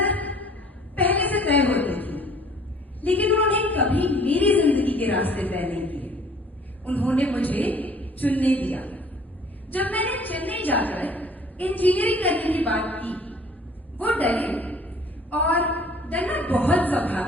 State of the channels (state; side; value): normal; both; correlation 0.53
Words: पहले से तय होती थी, लेकिन उन्होंने कभी मेरी जिंदगी के रास्ते तय नहीं किए। उन्होंने मुझे चुनने दिया। जब मैंने चेन्नई जाकर इंजीनियरिंग करने की बात की, वो डरे और डरना बहुत